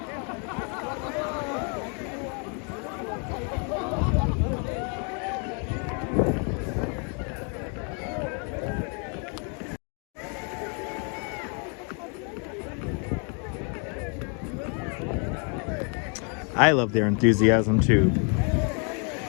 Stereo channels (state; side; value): quieter; right; 38.5 dB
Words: I love their enthusiasm too.